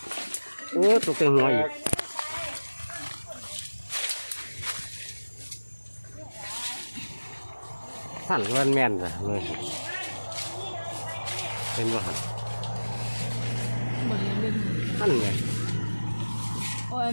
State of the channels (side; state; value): both; inverted; correlation -1.00